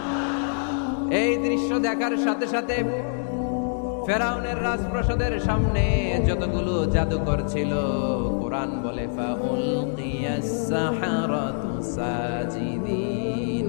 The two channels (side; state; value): right; silent; 62 dB below the other